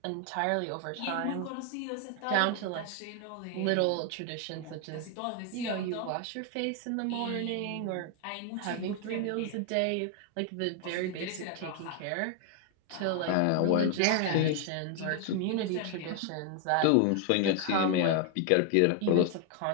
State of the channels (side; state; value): both; different; correlation 0.00